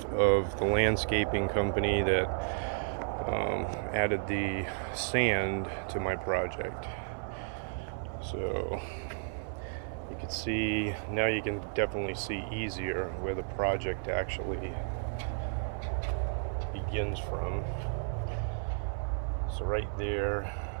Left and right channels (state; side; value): silent; left; 56 dB below the other